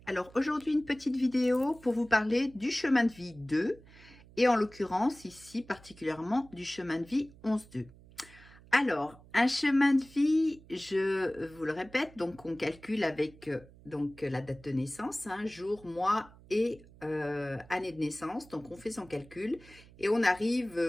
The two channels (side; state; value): right; noise; hum, 23 dB below the sound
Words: Alors aujourd'hui une petite vidéo pour vous parler du chemin de vie 2 et en l'occurrence ici particulièrement du chemin de vie 11-2. Alors un chemin de vie, je vous le répète, donc on calcule avec la date de naissance, jour, mois et année de naissance. Donc on fait son calcul et on